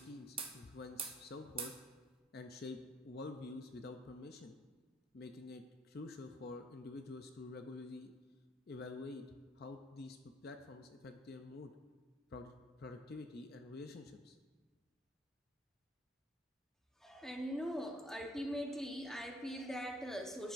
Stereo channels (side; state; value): both; normal; correlation 0.63